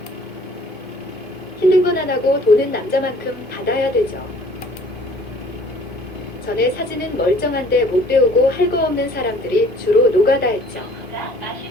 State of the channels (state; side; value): normal; both; correlation 0.54